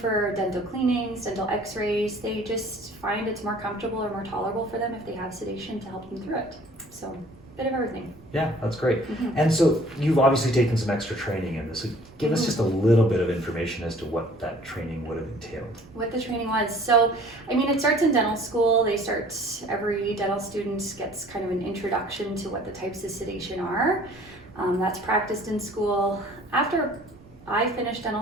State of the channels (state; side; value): noise; right; rumble, 27 dB below the sound